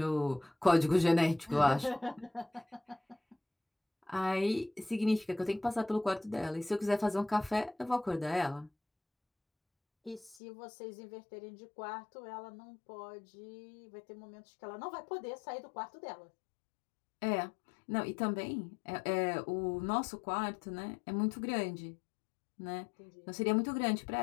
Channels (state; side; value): drops out; right; at 10.4 s